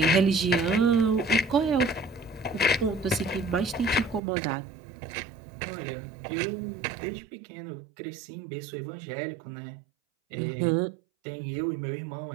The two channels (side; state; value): left; drops out; at 4.2 s